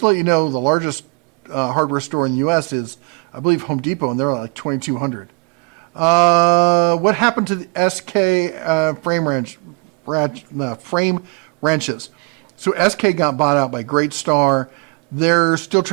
let you know, the largest hardware store in the U.S. is, I believe, Home Depot, and they're like 2,200. What happened to the SK frame wrenches? So SK got bought out by Great Star. They're still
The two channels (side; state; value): left; quieter; 32.2 dB